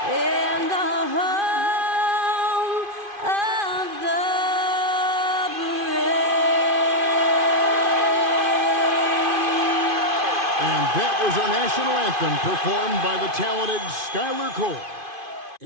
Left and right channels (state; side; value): late; left; 2.5 ms